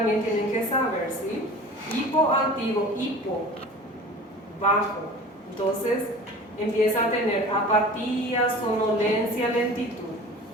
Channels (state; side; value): normal; both; correlation 0.40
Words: tienen que saber, ¿sí? Hipoactivo, hipo, bajo. Entonces, empieza a tener apatía, somnolencia, lentitud.